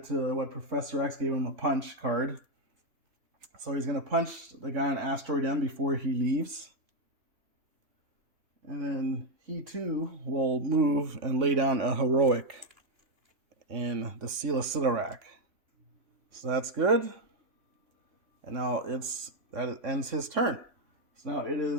to what Professor X gave him, a punch card. So he's going to punch the guy on Asteroid M before he leaves. And then he too will move and lay down a heroic in the Seal of Sidorak. So that's good. And now that ends his turn. So now it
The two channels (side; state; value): left; late; 3.6 ms